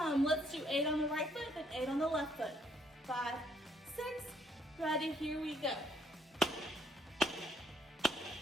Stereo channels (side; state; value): both; normal; correlation 0.68